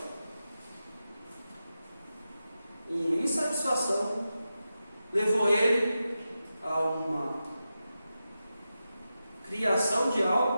Uma insatisfação levou ele a uma criação de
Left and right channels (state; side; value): inverted; both; correlation -0.91